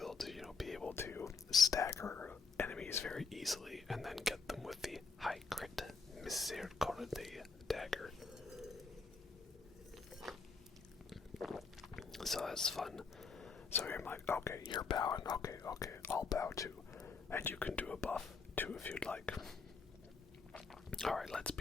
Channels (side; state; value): right; quieter; 4.7 dB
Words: to, be able to stagger enemies very easily and then get them with the high crit Misericordia dagger. So that's fun. So I'm like, okay, you're bowing. Okay, I'll bow too. And you can do a buff too if you'd like. Alright, let's